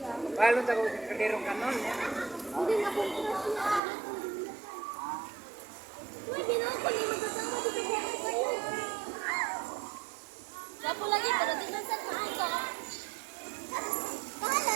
Balon ta ko kadero kanon. Hindi nga po Pwede na ako hindi magkasama dito sa kayo. Gapo lagi, pero di na sa maaga. Bahala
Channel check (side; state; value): left; drops out; at 3.8 s